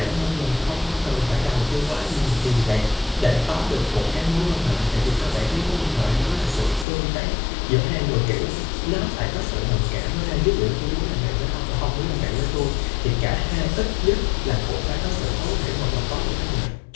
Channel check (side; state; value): right; drops out; at 6.9 s